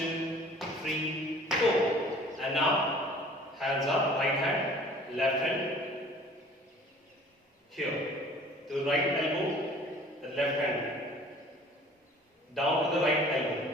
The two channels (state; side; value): normal; both; correlation 0.50